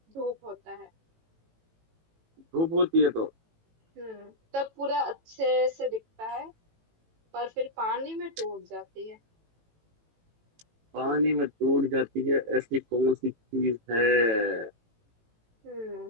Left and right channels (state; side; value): late; left; 18 ms